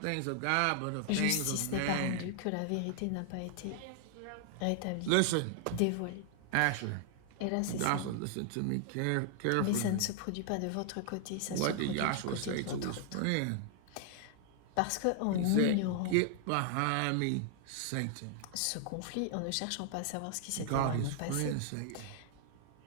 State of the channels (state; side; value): different; both; correlation 0.00